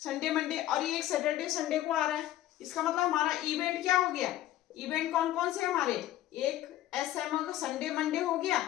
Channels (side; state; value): right; quieter; 13.7 dB